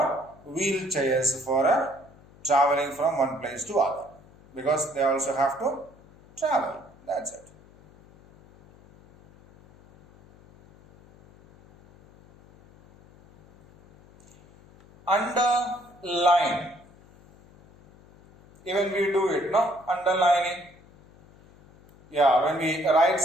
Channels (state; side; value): noise; left; hum, 26 dB below the sound